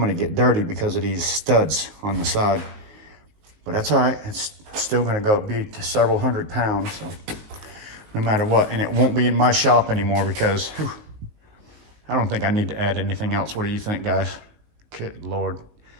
to get dirty because of these studs on the side. But that's all right. It's still going to be to several 100 pounds, so no matter what. And it won't be in my shop anymore because I don't think I need to add anything else. What do you think, guys? Good Lord.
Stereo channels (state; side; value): late; left; 18 ms